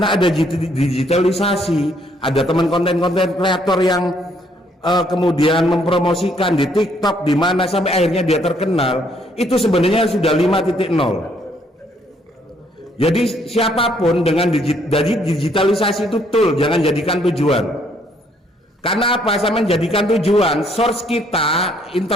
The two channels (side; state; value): both; normal; correlation 0.67